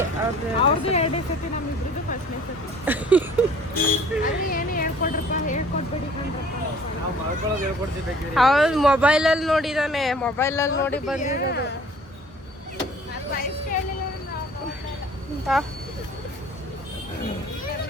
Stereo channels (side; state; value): both; normal; correlation 0.52